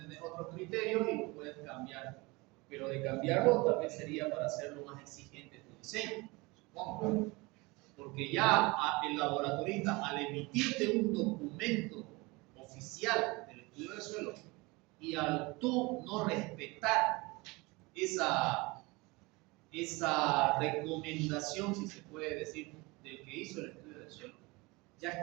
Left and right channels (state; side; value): quieter; left; 24.5 dB